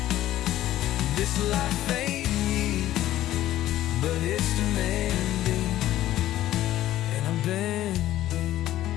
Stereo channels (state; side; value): quieter; right; 13.9 dB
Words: This life ain't me, but it's demanding, and I'm bending.